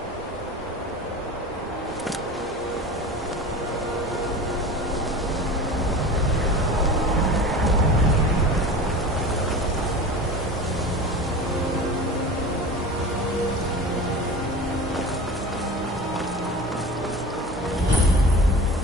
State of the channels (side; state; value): both; normal; correlation 0.34